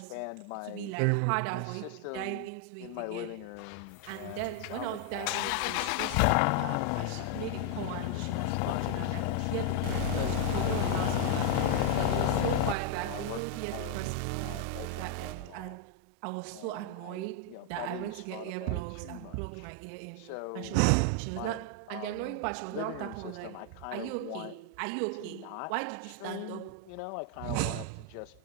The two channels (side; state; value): both; different; correlation 0.00